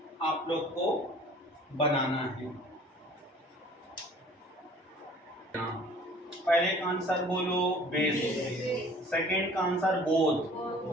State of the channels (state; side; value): normal; both; correlation 0.50